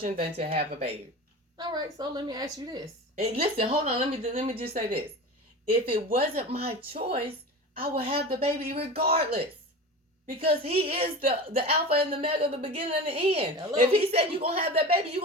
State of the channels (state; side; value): normal; both; correlation 0.31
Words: than to have a baby. All right, so let me ask you this. And listen, hold on. Let me just say this. If it wasn't my choice, I would have the baby regardless. Because he is the alpha and the omega, the beginning and the end. Hello. If he said you're going to have that baby, you're